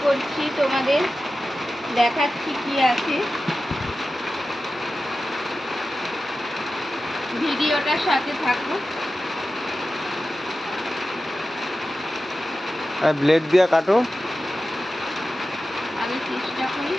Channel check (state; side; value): normal; both; correlation 0.93